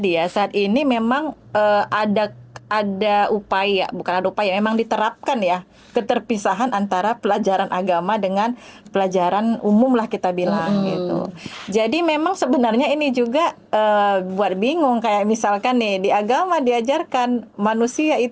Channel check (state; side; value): identical; both; correlation 1.00